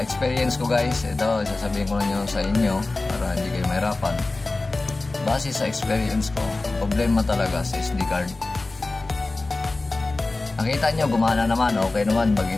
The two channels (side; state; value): right; quieter; 3.2 dB